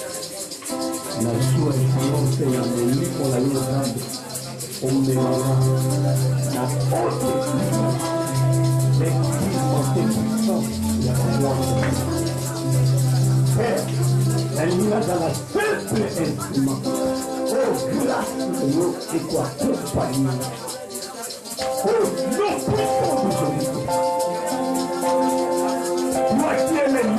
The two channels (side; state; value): both; identical; correlation 1.00